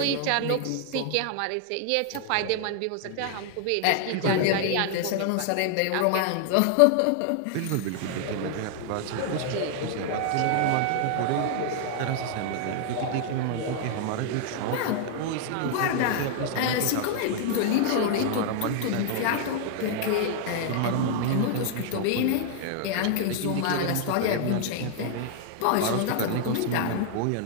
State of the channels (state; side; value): different; both; correlation 0.00